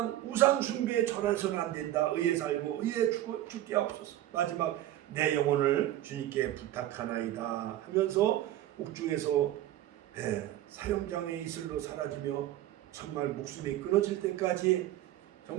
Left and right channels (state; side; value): quieter; left; 13.7 dB